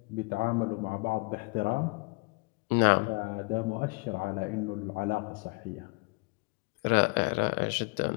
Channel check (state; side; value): quieter; right; 30.7 dB